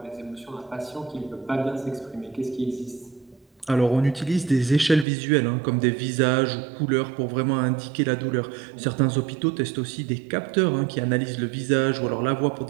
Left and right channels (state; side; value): drops out; left; at 5.1 s